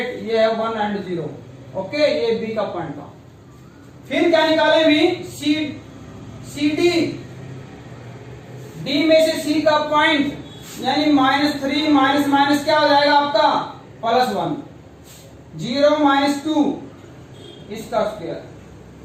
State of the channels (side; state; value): both; identical; correlation 1.00